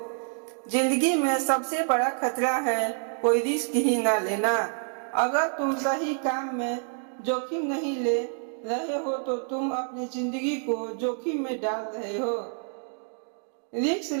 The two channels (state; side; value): silent; left; 60 dB below the other